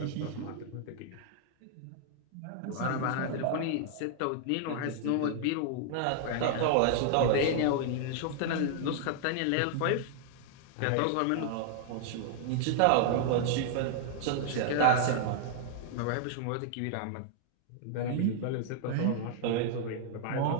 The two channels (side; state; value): both; different; correlation -0.01